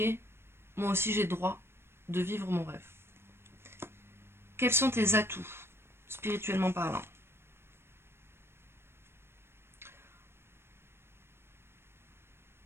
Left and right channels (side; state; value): left; late; 0.12 ms